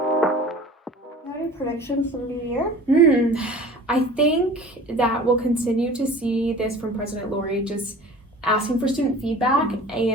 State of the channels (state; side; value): normal; both; correlation 0.42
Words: Any predictions for the new year? I think that we'll continue to see this from President Lori, just asking for student feedback